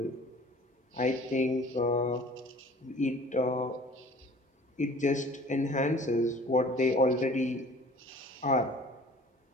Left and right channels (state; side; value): normal; both; correlation 0.48